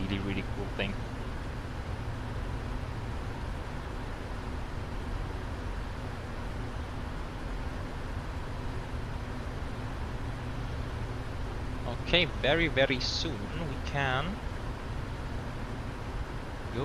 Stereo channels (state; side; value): identical; both; correlation 1.00